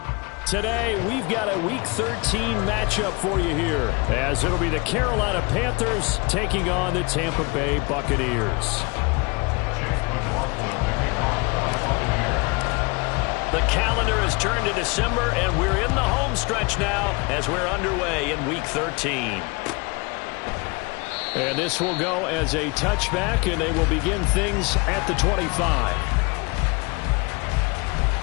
Today, we've got a Week 13 matchup for you here, as it'll be the Carolina Panthers taking on the Tampa Bay Buccaneers. The calendar has turned to December, and we're in the home stretch now as we're underway in Week 13. And this will go as a touchback, and they will begin things at the 25.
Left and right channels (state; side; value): quieter; right; 28.3 dB